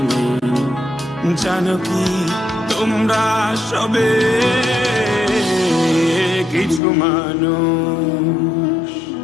নেই, জানো কি তোমরা সবে কিছু মানুষ,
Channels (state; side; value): drops out; right; at 6.8 s